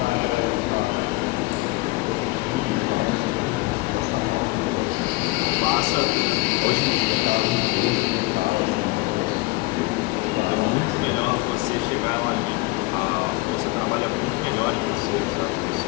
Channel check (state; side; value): quieter; right; 22.5 dB